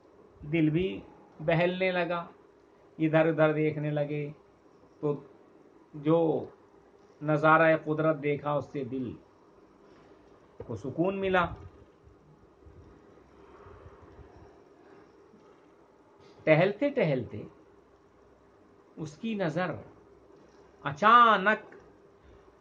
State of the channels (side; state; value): both; identical; correlation 1.00